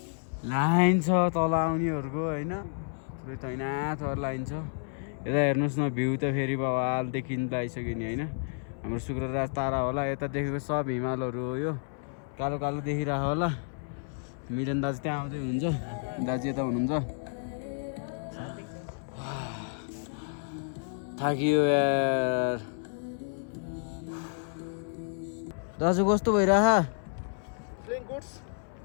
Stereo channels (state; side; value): silent; right; 58 dB below the other